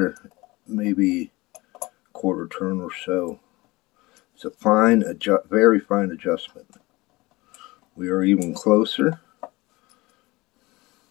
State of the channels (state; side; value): quieter; right; 21.7 dB